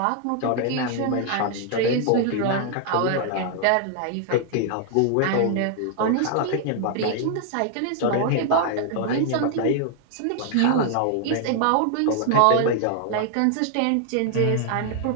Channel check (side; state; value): both; different; correlation 0.00